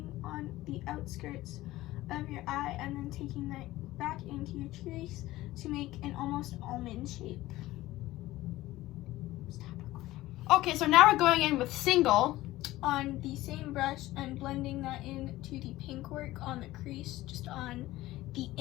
on the outskirts of your eye, and then taking that back into your crease to make an almost almond shape. Stop recording. Okay, so now we're going in with Single. On the same brush and blending that into the pink work on the crease, just on the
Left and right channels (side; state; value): right; quieter; 16.9 dB